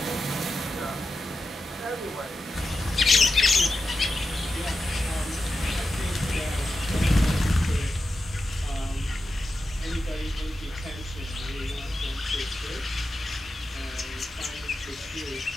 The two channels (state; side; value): normal; both; correlation 0.90